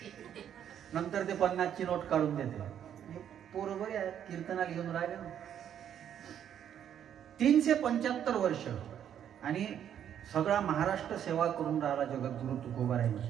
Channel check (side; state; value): left; quieter; 9.6 dB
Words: नंतर ते 50ची नोट काढून देते. पोरं बरे आहेत, कीर्तनाला घेऊन राहिले ना. 375 वर्ष आणि सगळा महाराष्ट्र सेवा करून राहिला जगद्गुरु तुकोबारायांची.